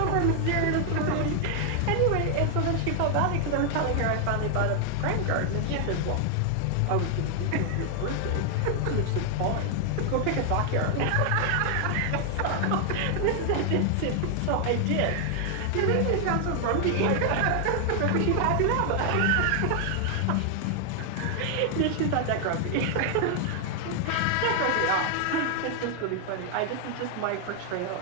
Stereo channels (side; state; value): both; different; correlation 0.00